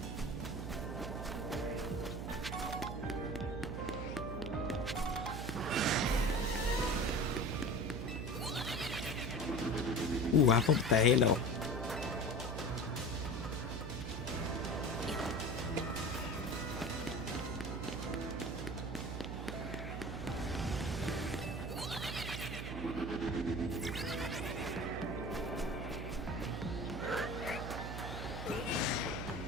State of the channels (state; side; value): noise; right; hum, 5 dB below the sound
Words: Ooh, apple with the halo.